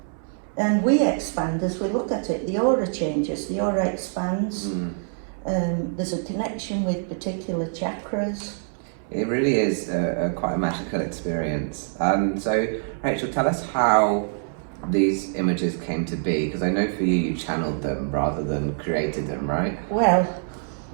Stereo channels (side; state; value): left; silent; 62 dB below the other